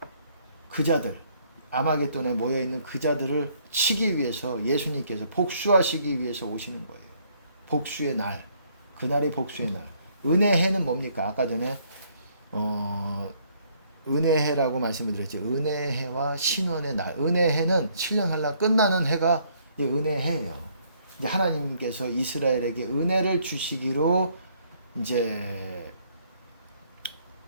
자들, 아마겟돈에 모여있는 그 자들을 치기 위해서 예수님께서 복수하시기 위해서 오시는 거예요. 복수의 날. 그날이 복수의 날. 은혜해는 뭡니까? 아까 전에 은혜해라고 말씀을 드렸죠. 은혜해와 신원의 날. 은혜해는 7년 한라 끝나는 해가 이제 은혜해예요. 이제 하나님께서 이스라엘에게 은혜를 주시기로 이제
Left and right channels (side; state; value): both; inverted; correlation -0.66